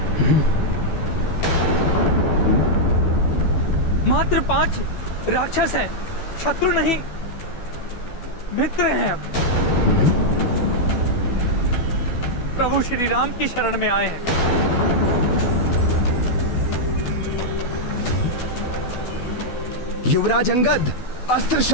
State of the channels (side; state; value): right; late; 12 ms